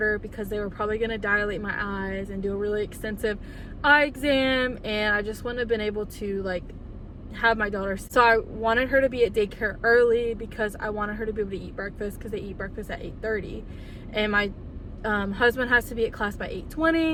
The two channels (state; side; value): identical; both; correlation 1.00